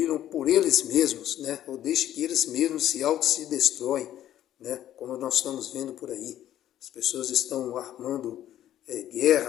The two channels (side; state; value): right; quieter; 12.1 dB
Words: por eles mesmos, né? Ou deixe que eles mesmos se destroem, né? Como nós estamos vendo por aí. As pessoas estão armando